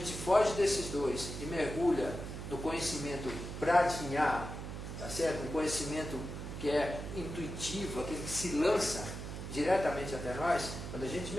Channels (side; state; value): right; noise; hum, 7 dB below the sound